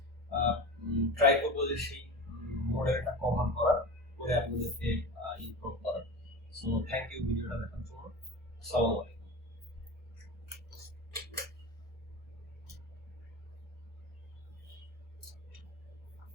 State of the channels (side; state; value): both; normal; correlation 0.30